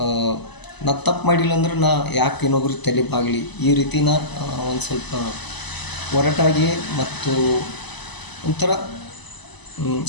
ನಾ ತಪ್ಪು ಮಾಡಿಲ್ಲ ಅಂದ್ರೆ ನಾ ಯಾಕೆ ಇನ್ನೊಬ್ರಿಗೆ ತಲೆ ಬಾಗಲಿ ಈ ರೀತಿನ ಒಂದು ಸ್ವಲ್ಪ ಒರಟಾಗಿ ಮತ್ತು ಒಂಥರ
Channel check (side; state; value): right; late; 1.0 ms